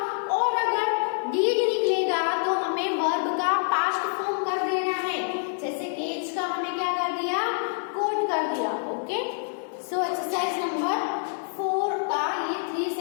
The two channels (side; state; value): right; silent; digital silence